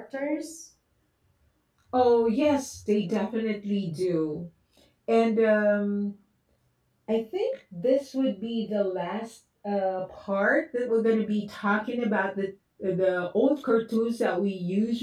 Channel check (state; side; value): identical; both; correlation 1.00